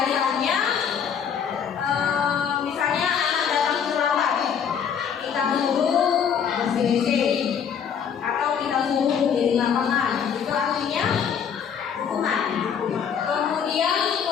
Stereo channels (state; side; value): quieter; right; 7.6 dB